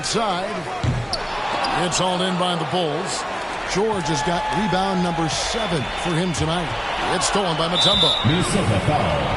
It's hauled in by the Bulls. George has got rebound number 7 for him tonight. It's stolen by Mutombo. Minnesota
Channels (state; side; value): identical; both; correlation 1.00